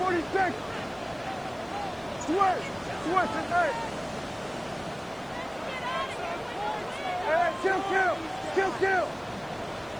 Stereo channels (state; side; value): noise; left; hiss, 30 dB below the sound